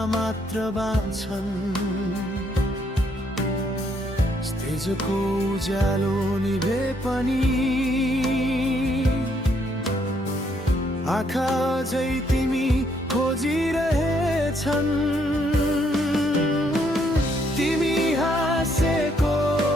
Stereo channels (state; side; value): normal; both; correlation 0.71